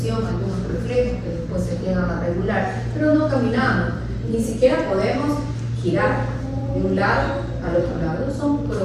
algunos reflejos que después se llegan a regular, pero no caminamos, ni siquiera podemos girar de un lado al otro lado. Son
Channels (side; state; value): both; identical; correlation 1.00